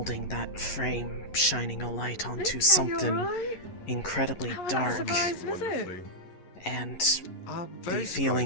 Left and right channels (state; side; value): late; right; 11 ms